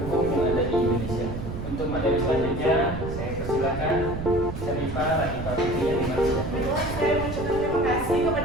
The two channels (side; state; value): right; noise; rumble, 7 dB below the sound